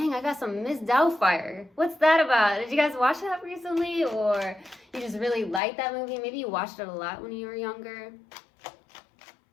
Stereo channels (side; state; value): right; drops out; at 5.6 s